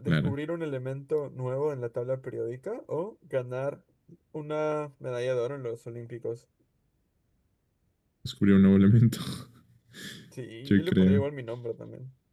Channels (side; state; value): both; identical; correlation 1.00